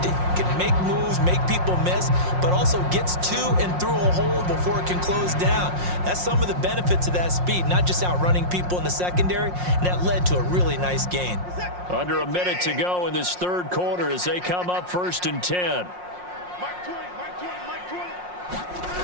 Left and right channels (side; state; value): left; late; 5.6 ms